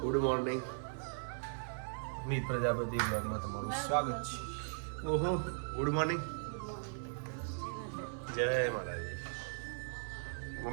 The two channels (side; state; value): left; silent; 52 dB below the other